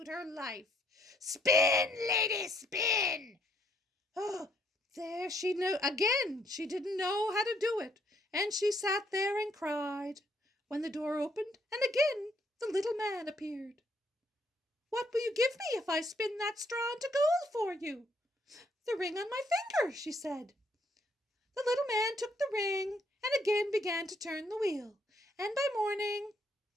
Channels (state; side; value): normal; both; correlation 0.70